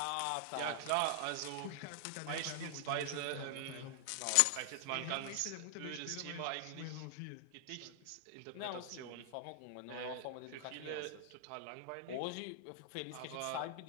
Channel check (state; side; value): different; both; correlation 0.00